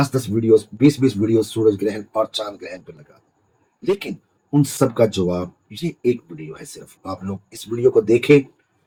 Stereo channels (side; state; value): both; identical; correlation 1.00